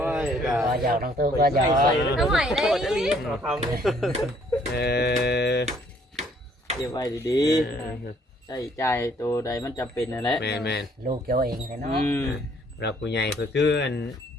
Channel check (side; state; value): both; normal; correlation 0.63